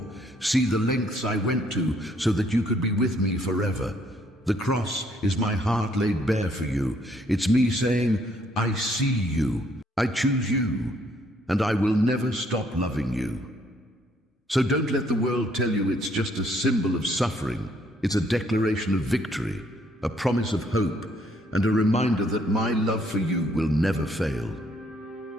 See the lengths I went to so that you could be with me forever. The cross is my heart laid bare for you. It's me saying, I see you. I choose you, and I will never stop loving you. So don't let the world tell you it's just a symbol of suffering. It's a declaration of victory, a promise of hope, and a reminder that my love for you will never fail.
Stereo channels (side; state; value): both; normal; correlation 0.67